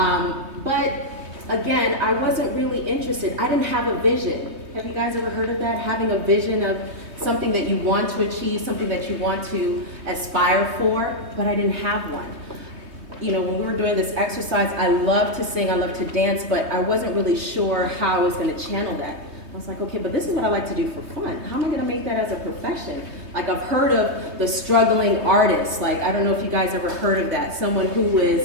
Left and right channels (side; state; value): left; late; 3.2 ms